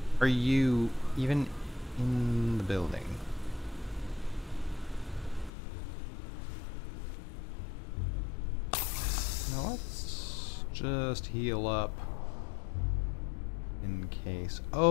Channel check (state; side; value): drops out; right; at 5.5 s